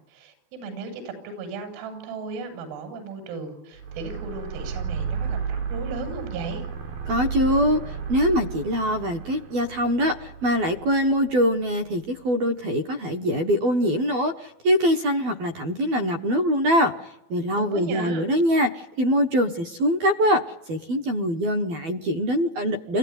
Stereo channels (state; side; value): late; left; 12 ms